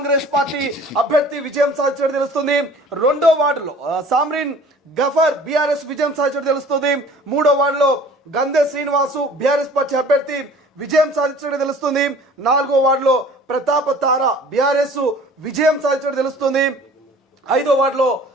పార్టీ అభ్యర్థి విజయం సాధించడం తెలుస్తుంది. రెండో వార్డులో సామ్రీన్ గఫర్ బీఆర్ఎస్ విజయం సాధించడం తెలుస్తుంది. మూడో వార్డులో గంధే శ్రీనివాసు బీఆర్ఎస్ పార్టీ అభ్యర్థి విజయం సాధించడం తెలుస్తుంది. నాలుగో వార్డులో ప్రతాప తార బీఆర్ఎస్ విజయం సాధించడం తెలుస్తుంది. ఐదో వార్డులో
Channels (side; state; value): both; normal; correlation 0.48